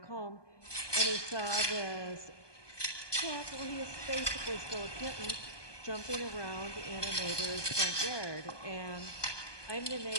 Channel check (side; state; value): right; late; 1.2 ms